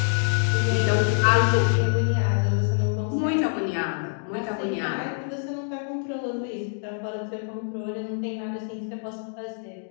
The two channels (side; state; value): right; silent; digital silence